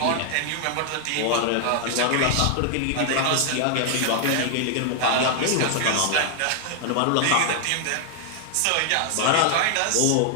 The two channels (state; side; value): different; both; correlation 0.00